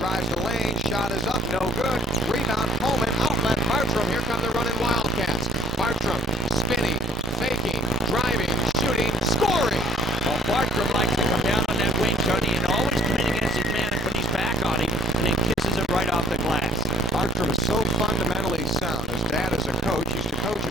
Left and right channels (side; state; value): both; normal; correlation 0.54